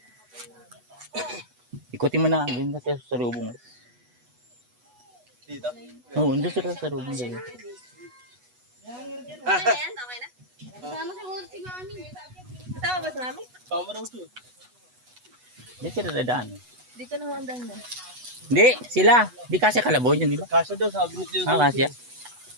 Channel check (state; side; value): late; left; 8.1 ms